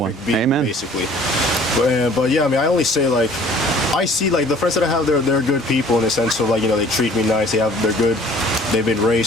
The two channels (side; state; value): both; normal; correlation 0.52